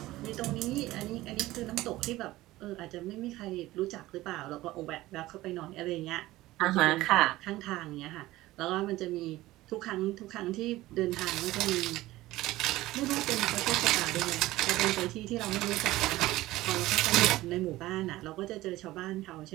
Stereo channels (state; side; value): quieter; left; 17.3 dB